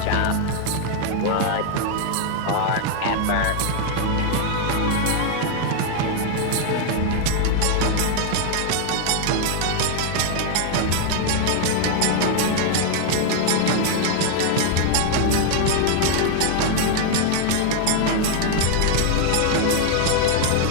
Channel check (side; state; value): both; different; correlation 0.00